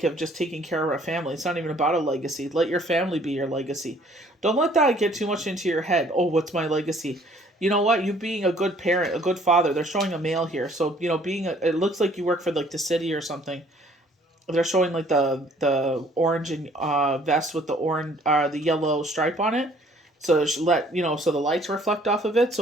of just taking care of our family. It's not even about a legacy. Let your family be your legacy. Don't let that get too much into your head. Oh, what's my legacy? You know what? You being a good parent, a good father. They're showing a male here. So, it looks like you work for like the city or something. They're showing like the orange and vest with the orange the yellow stripe on it. So so the lights reflect off of it.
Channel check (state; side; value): normal; both; correlation 0.59